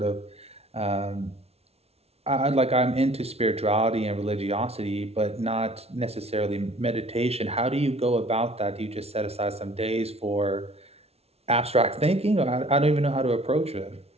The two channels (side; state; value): left; late; 0.30 ms